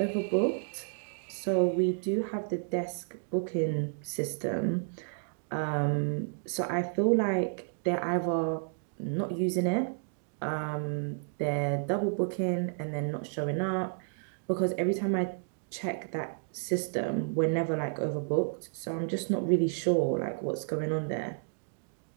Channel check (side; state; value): left; silent; 57 dB below the other